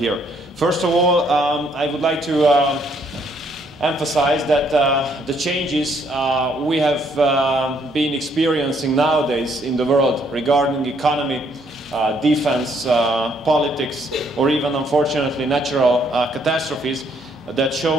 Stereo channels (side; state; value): both; normal; correlation 0.68